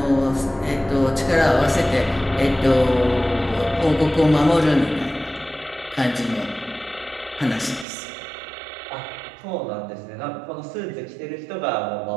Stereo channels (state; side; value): drops out; left; at 7.9 s